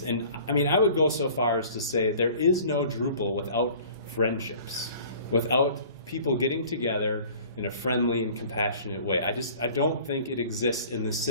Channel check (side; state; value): both; inverted; correlation -0.47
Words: And I mean, I would go so far as to say there is no Drupal without friendships, without people getting together in a friendly and compassionate way. I don't think it exists in the